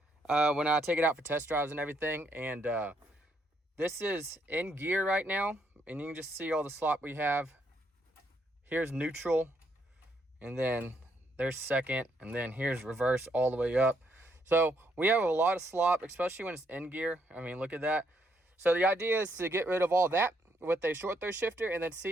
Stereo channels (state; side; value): normal; both; correlation 0.74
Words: when I take it out for test drives and everything. And this is in gear right now, and you can just see all the slop we have. Here's neutral, and then there's second, and then here's reverse all the way up. So we have a lot of slop, especially when it's in gear. I mean, look at that. So the idea is to get rid of all that with a short throw shifter, and then see